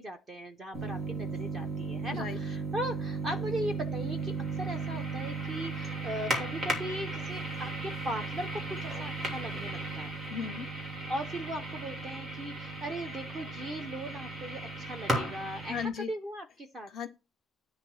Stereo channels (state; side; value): normal; both; correlation 0.61